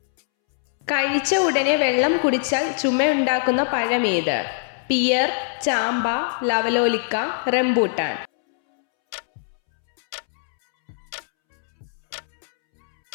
കഴിച്ച ഉടനെ വെള്ളം കുടിച്ചാൽ ചുമയുണ്ടാക്കുന്ന പഴമേത്? പിയർ, ചാമ്പ, ലവലോലിക്ക, റംബൂട്ടാൻ.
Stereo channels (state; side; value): silent; right; 64 dB below the other